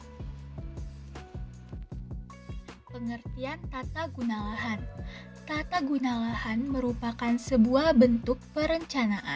Pengertian tata guna lahan. Tata guna lahan merupakan sebuah bentuk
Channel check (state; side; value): identical; both; correlation 1.00